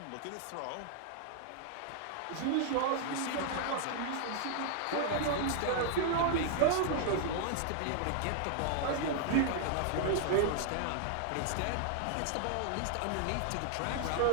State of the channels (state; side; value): different; both; correlation -0.01